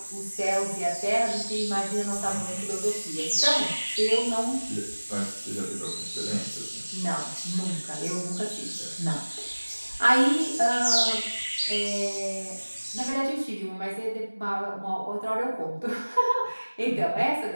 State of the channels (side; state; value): both; inverted; correlation -1.00